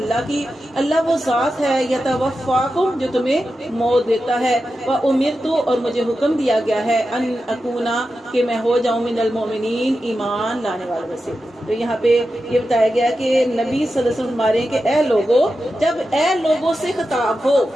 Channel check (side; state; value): both; normal; correlation 0.91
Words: کی، اللہ وہ ذات ہے، یتوفاکم جو تمہیں موت دیتا ہے، وامرت اور مجھے حکم دیا گیا ہے، ان اکونا کہ میں ہو جاؤں من المؤمنین ایمان لانے والوں میں سے۔ تو یہاں پہ یہ بتایا گیا کہ نبی صلی اللہ علیہ وسلم ہمارے کہ اے لوگوں، جب اے لوگوں سے خطاب ہو